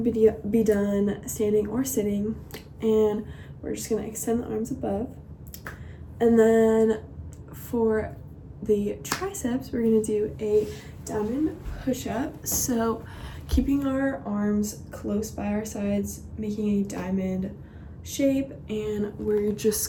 be done standing or sitting, and we're just going to extend the arms above. And then for the triceps, we're going to do a diamond push-up. So keeping our arms close by our sides, making a diamond shape, and we're just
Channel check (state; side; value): identical; both; correlation 1.00